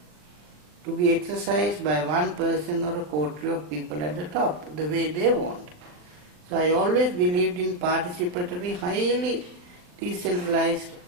to be exercised by one person or a coterie of people at the top, the way they want. So I always believed in participatory, highly decentralized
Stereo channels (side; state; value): left; late; 39 ms